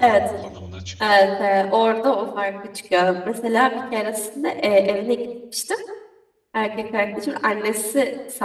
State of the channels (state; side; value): identical; both; correlation 1.00